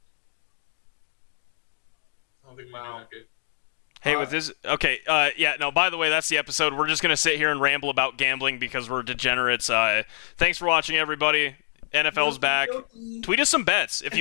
think we Wow. do that good. Hey, with this, okay, yeah, no, by the way, that's the episode. We're just going to sit here and ramble about gambling because we're degenerates. Thanks for watching, everybody. NFL's back. Tweet us some bets. If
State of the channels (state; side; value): silent; right; digital silence